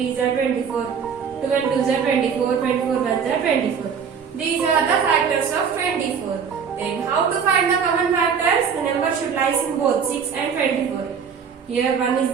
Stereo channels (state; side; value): quieter; left; 6.7 dB